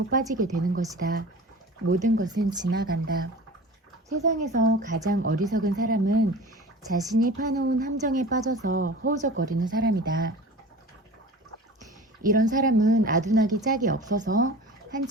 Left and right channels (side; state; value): both; normal; correlation 0.38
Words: 빠지게 되는 것이다. 모든 것은 지나간다. 세상에서 가장 어리석은 사람은 자신이 파놓은 함정에 빠져서 허우적거리는 사람이다. 이런 사람은 아둔하기 짝이 없어서